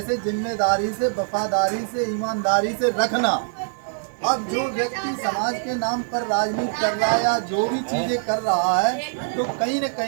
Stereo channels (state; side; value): silent; left; 59 dB below the other